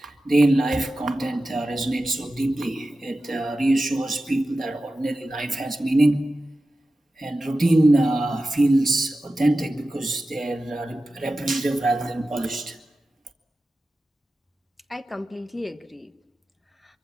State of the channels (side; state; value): both; normal; correlation 0.93